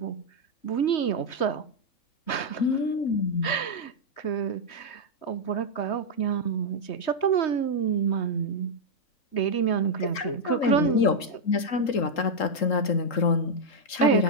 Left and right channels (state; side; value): late; right; 3.8 ms